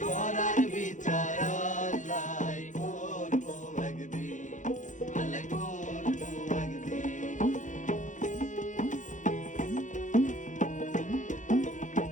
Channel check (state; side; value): late; right; 0.36 ms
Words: তোরার বিচার আল্লাহ করবো একদিন, আল্লাহ করবো একদিন।